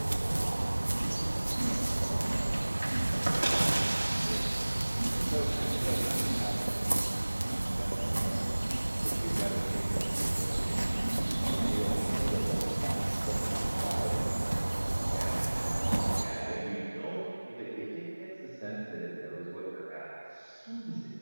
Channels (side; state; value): both; inverted; correlation -1.00